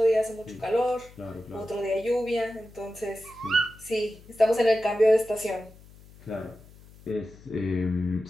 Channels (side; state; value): left; noise; hum, 22 dB below the sound